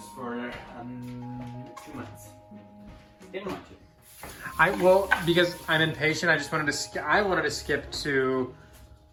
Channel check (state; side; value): identical; both; correlation 1.00